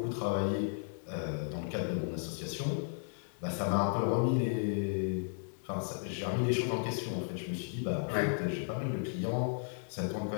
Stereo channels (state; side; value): silent; right; digital silence